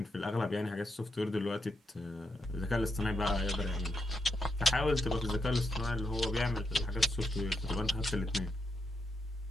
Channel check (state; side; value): normal; both; correlation 0.82